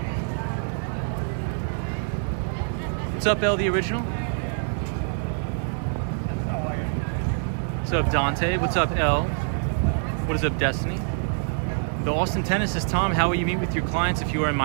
What's up, L, the original? What's up, Dante? What's up, L? What is up, Destiny? The Austin tennis says, Tom, how will you meet with your clients if you are in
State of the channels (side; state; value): left; silent; 56 dB below the other